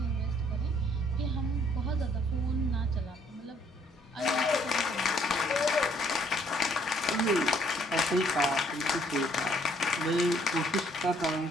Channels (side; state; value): both; normal; correlation 0.64